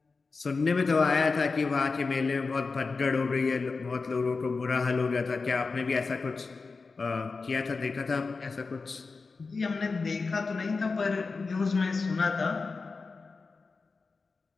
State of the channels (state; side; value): quieter; right; 4.3 dB